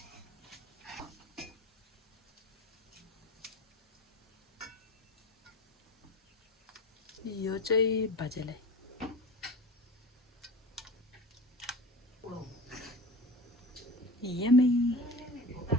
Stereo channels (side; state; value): both; normal; correlation 0.33